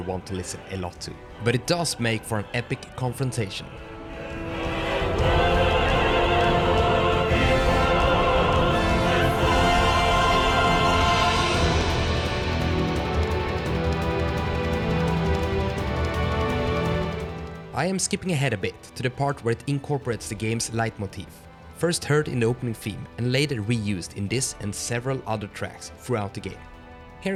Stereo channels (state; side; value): identical; both; correlation 1.00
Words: to listen a lot to. But it does make for an epic confrontation. I am skipping ahead a bit to the part where it incorporates the game's leitmotif, first heard in the opening theme and later reused in this and several other tracks throughout the game.